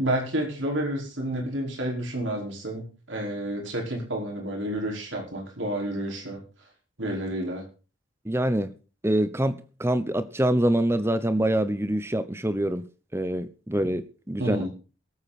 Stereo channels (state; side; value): normal; both; correlation 0.71